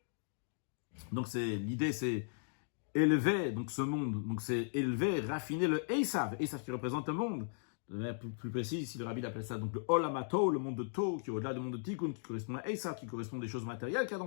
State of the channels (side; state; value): right; silent; digital silence